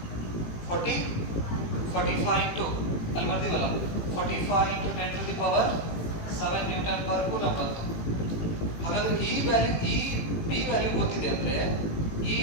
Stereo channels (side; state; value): right; late; 18 ms